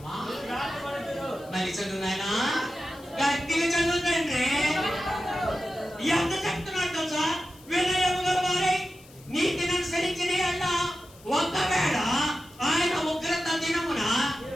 మళ్ళీ చదువు నాయనా, గట్టిగా చదువుతండి. ఎంత చెప్తున్నాడు తెలుసా, వినయము గల వారి నీతిని అనుసరించిన యెడల ఒకవేళ ఆయన ఉగ్రత దినమున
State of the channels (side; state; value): left; noise; hiss, 24 dB below the sound